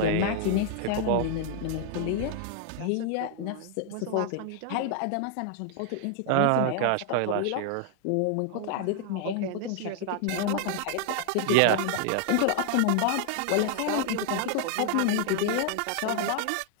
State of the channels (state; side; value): different; both; correlation 0.00